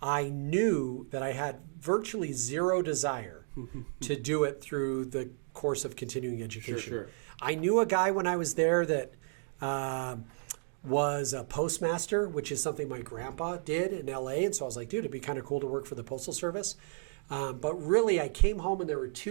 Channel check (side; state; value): left; silent; digital silence